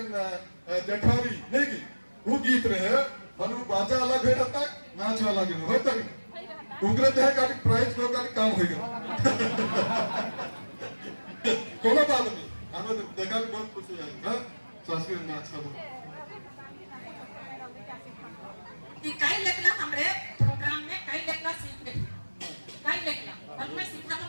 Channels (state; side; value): inverted; both; correlation -1.00